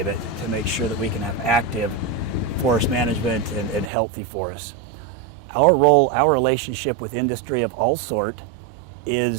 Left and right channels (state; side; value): drops out; left; at 3.9 s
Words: to make sure that we can have active forest management and healthy forests. Our role, our relationship with industry of all sort